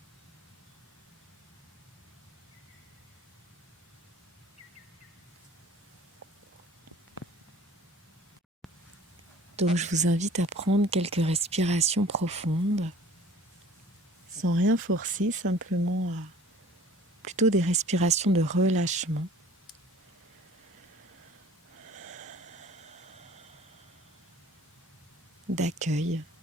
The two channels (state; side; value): normal; both; correlation 0.48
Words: Donc je vous invite à prendre quelques respirations profondes, sans rien forcer, simplement à plutôt des respirations de relâchement, d'accueil,